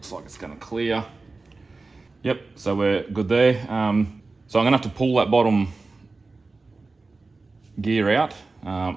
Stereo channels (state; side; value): quieter; left; 3.7 dB